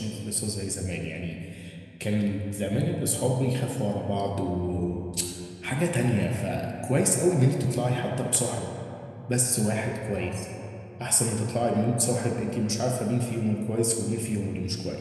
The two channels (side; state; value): both; identical; correlation 1.00